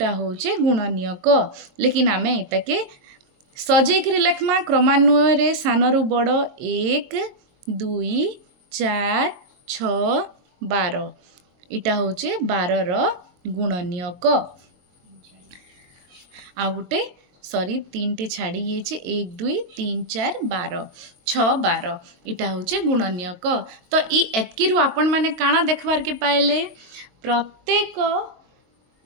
होचे गुणनीयक लेकिन आमे इताके सजेकरी लिखमा क्रमान्वय रे सानरु बड़ 1 2 4 6 12 इटा होचे 12 रो गुणनीयक आ गुटे सॉरी 3 टे छाड़ी ये 1 2 3 4 12 6 12 इटा होचे गुणनीयक तो ई एतकी आपण माने काना देखबार के पाइले प्रत्येक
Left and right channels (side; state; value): left; late; 22 ms